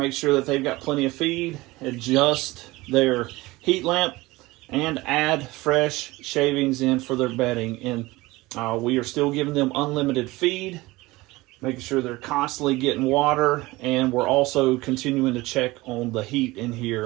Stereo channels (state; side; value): quieter; left; 20.5 dB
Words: sure that they've got plenty of feed. Adjust their heat lamp and add fresh shavings in for their bedding. And we are still giving them unlimited feed, making sure they're constantly getting water, and we're also continuing to check on the heat in